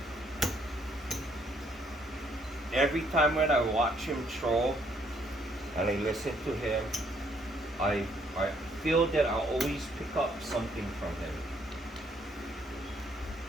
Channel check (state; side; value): normal; both; correlation 0.68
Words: every time when I watch him throw and I listen to him, I feel that I always pick up something from him.